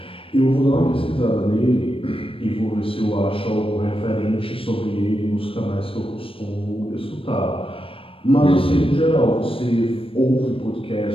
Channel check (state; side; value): late; right; 0.26 ms